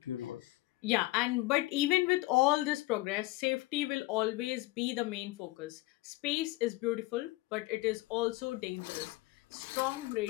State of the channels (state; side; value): quieter; right; 19.8 dB